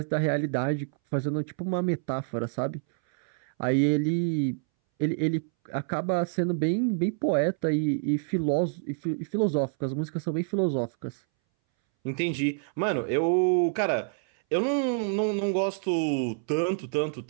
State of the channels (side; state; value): left; silent; 60 dB below the other